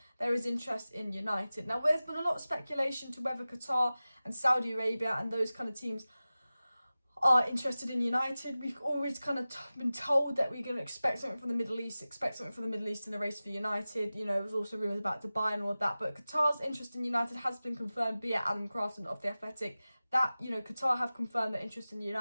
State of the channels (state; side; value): inverted; both; correlation -0.96